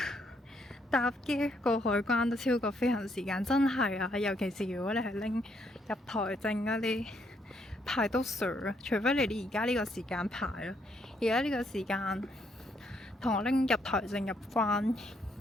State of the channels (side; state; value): both; normal; correlation 0.73